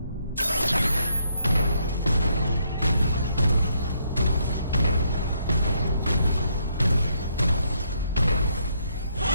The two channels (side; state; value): both; inverted; correlation -0.74